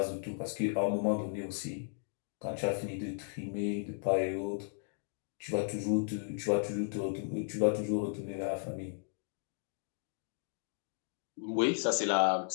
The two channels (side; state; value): right; silent; digital silence